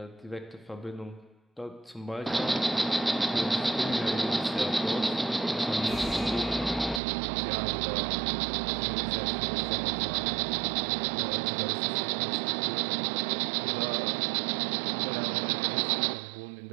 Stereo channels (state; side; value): drops out; left; at 7.0 s